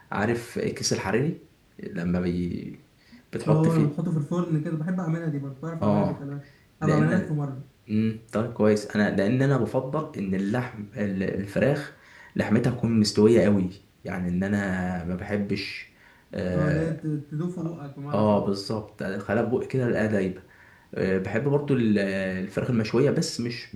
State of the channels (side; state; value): both; identical; correlation 1.00